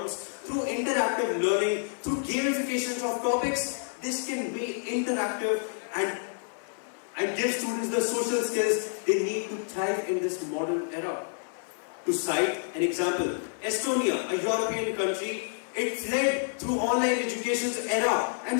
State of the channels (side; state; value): right; silent; 59 dB below the other